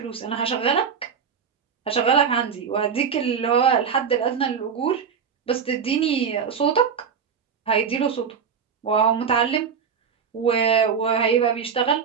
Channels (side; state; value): left; quieter; 6.8 dB